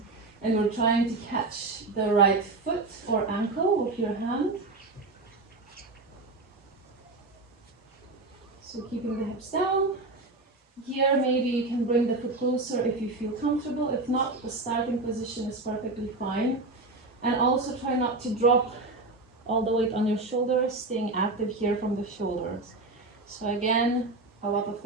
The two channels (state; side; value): quieter; left; 3.3 dB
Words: and we're trying to catch the right foot or ankle with your hand. So keeping the hips down. Here maybe you can bring the foot closer if you feel comfortable. If not, the starting position is perfectly fine. And also try not to drop all the weight on your shoulders, staying active here from the shoulders. So again, a lot of